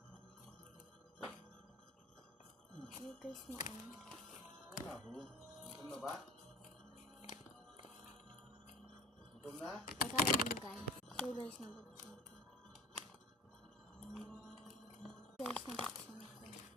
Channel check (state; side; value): normal; both; correlation 0.37